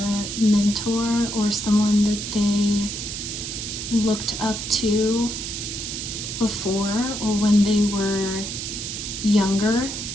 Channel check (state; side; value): noise; right; hiss, 6 dB below the sound